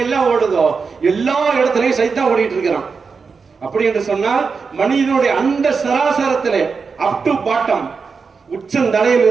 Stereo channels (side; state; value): left; quieter; 5.1 dB